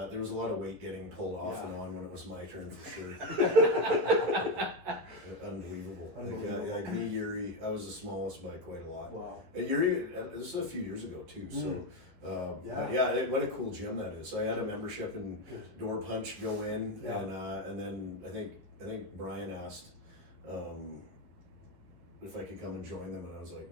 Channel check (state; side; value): late; left; 11 ms